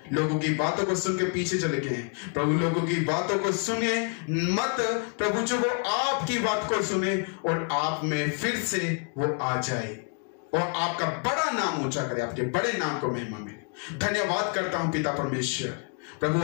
लोगों की बातों को सुनकर पीछे चले गए हैं, प्रभु लोगों की बातों को सुने मत प्रभु, जो वो आपकी बात को सुने और आप में फिर से वो आ जाए और आपका बड़ा नाम ऊंचा करे, आपके बड़े नाम को महिमा मिले। धन्यवाद करता हूं पिता परमेश्वर। प्रभु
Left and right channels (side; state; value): right; quieter; 36.8 dB